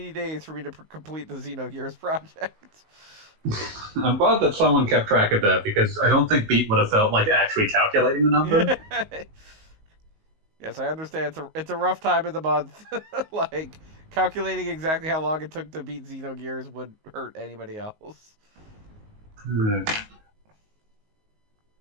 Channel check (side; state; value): left; late; 19 ms